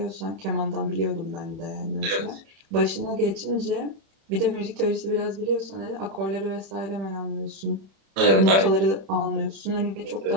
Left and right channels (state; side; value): late; left; 31 ms